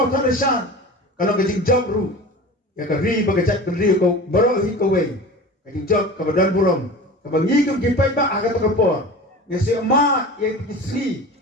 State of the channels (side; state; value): both; normal; correlation 0.35